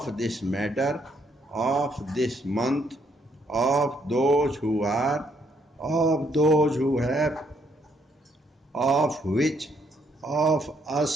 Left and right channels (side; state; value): both; normal; correlation 0.71